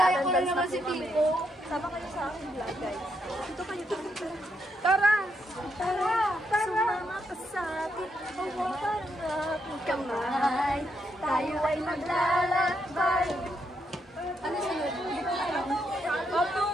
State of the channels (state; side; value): normal; both; correlation 0.79